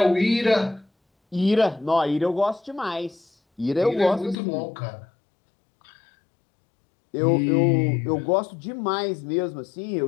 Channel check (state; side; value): drops out; right; at 4.4 s